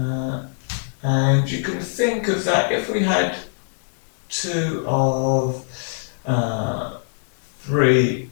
And you can think of that if we had 2 of 3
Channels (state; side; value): silent; right; digital silence